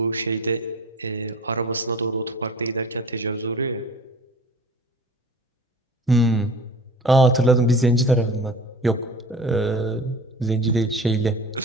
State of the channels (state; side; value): normal; both; correlation 0.40